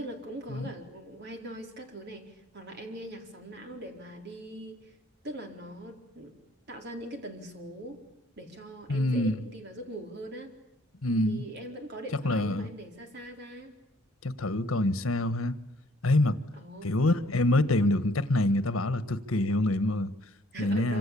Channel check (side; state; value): both; normal; correlation 0.62